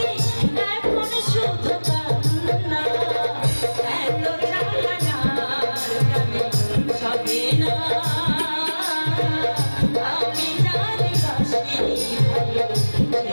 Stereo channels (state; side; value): inverted; both; correlation -1.00